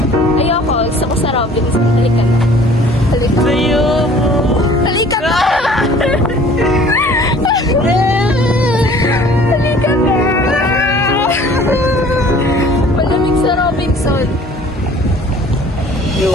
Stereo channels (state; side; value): normal; both; correlation 0.51